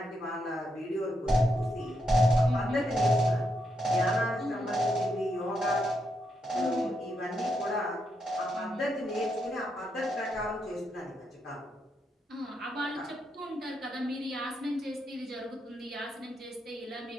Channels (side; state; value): both; normal; correlation 0.81